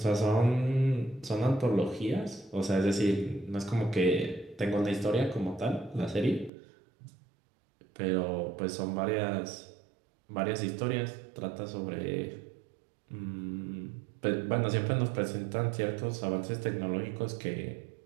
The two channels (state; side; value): drops out; left; at 6.5 s